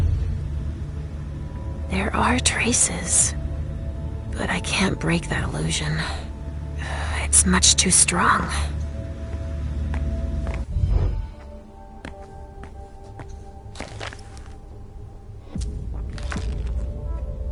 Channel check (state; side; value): identical; both; correlation 1.00